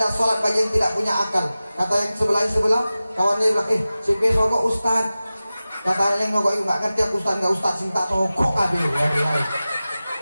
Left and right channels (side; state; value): both; inverted; correlation -0.96